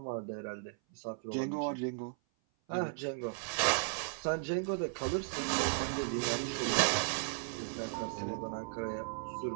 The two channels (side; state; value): left; silent; 54 dB below the other